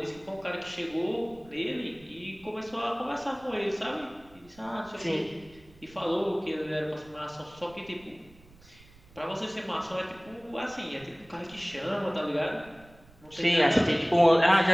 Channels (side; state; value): right; noise; rumble, 25 dB below the sound